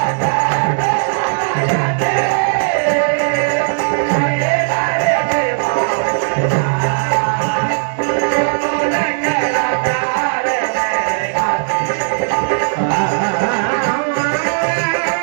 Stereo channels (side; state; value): left; silent; digital silence